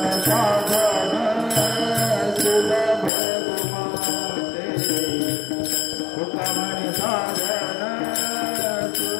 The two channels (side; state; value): right; drops out; at 3.1 s